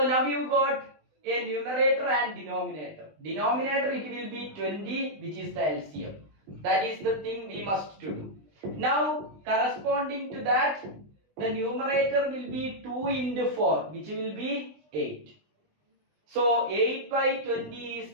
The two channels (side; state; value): left; late; 20 ms